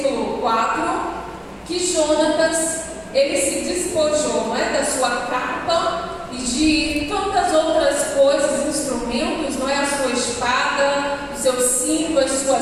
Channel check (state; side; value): identical; both; correlation 1.00